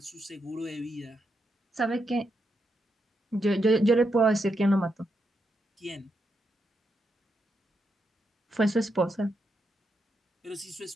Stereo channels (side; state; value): both; normal; correlation 0.82